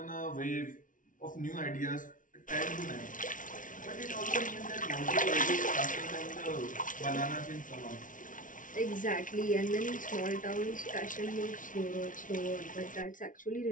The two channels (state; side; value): late; right; 0.38 ms